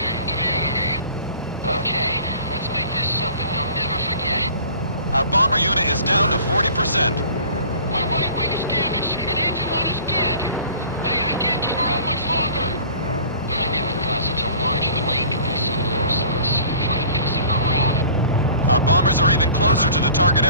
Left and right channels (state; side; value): inverted; both; correlation -0.46